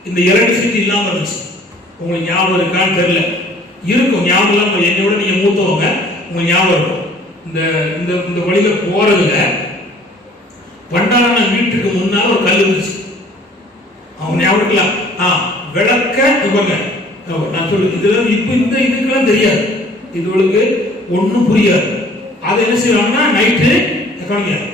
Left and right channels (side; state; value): both; normal; correlation 0.54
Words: இந்த எலக்ட்ரிசிட்டி இல்லாம இருந்துச்சு. உங்களுக்கு ஞாபகம் இருக்கான்னு தெரியல. இருக்கும், ஞாபகம் இல்லாம என்னோட நீங்க மூத்தவங்க, உங்களுக்கு ஞாபகம் இருக்கும். இந்த வழியில போறதுல பண்டாரன வீட்டுக்கு முன்னால ஒரு கல் இருந்துச்சு. அவங்க ஞாபகம் இருக்கலாம். விளக்க இவங்க நான் சொல்லு, இதெல்லாம் இப்ப இந்த இதுக்கெல்லாம் தெரியாது, இதுகளுக்கு ஒன்றும் புரியாது. அதை என்ன செய்வாங்கன்னா, நைட்டு